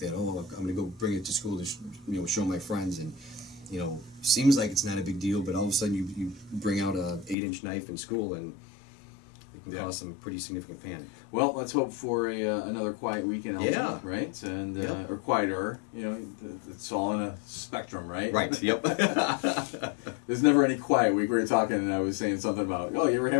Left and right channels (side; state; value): right; drops out; at 7.4 s